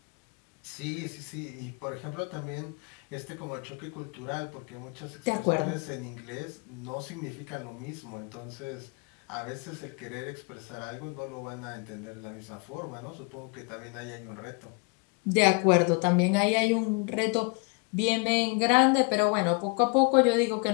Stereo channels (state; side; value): quieter; right; 30.7 dB